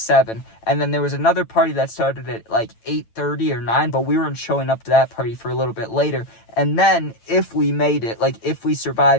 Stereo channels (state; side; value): late; right; 9.0 ms